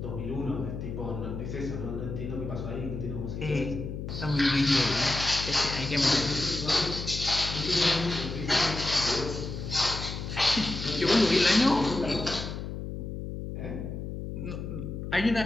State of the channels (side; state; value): left; noise; hum, 6 dB below the sound